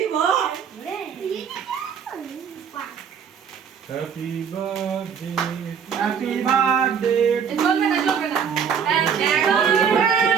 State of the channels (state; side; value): quieter; left; 7.3 dB